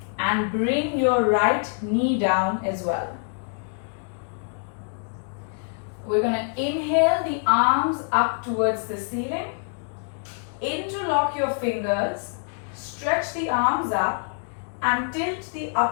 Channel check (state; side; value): silent; right; 62 dB below the other